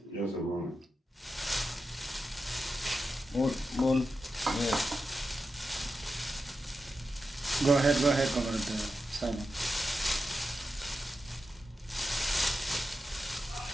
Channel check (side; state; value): both; normal; correlation 0.90